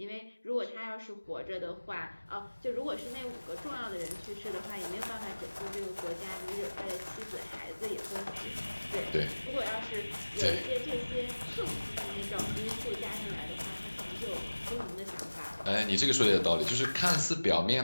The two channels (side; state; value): both; inverted; correlation -1.00